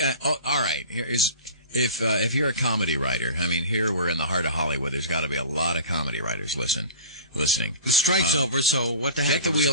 all right, here is if you're a comedy writer. I mean, here we're in the heart of Hollywood. There's got to be a lot of comedy writers listening. The strike's over, so what the heck? Get the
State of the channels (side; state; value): both; inverted; correlation -0.39